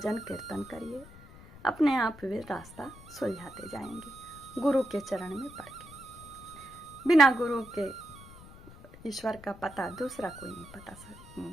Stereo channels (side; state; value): left; noise; rumble, 19 dB below the sound